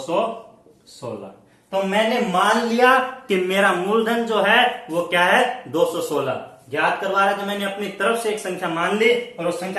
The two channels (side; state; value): both; identical; correlation 1.00